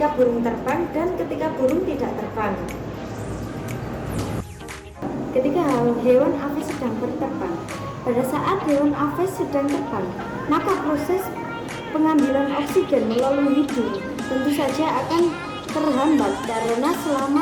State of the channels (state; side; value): identical; both; correlation 1.00